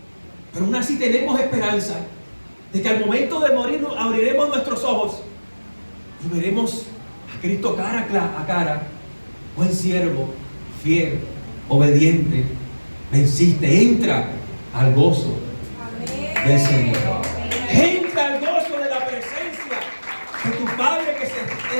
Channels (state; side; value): inverted; both; correlation -1.00